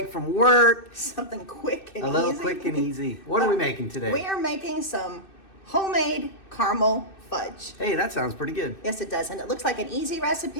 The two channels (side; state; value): right; late; 2.6 ms